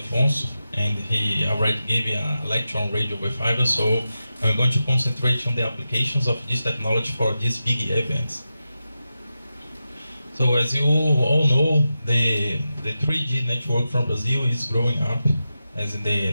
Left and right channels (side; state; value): both; inverted; correlation -0.91